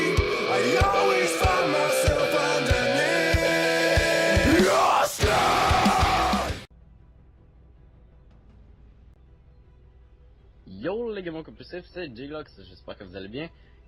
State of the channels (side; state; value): both; identical; correlation 1.00